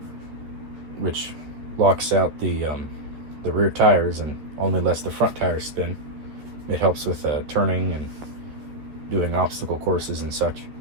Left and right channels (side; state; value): left; late; 13 ms